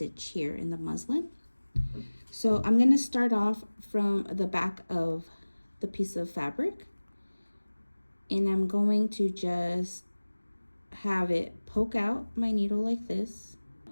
here in the muslin. So I'm going to start off from the back of the piece of fabric, and I'm going to just have it poke out my needle like this,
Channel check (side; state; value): both; inverted; correlation -1.00